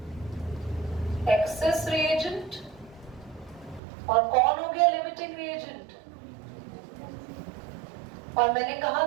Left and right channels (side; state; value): left; drops out; at 3.8 s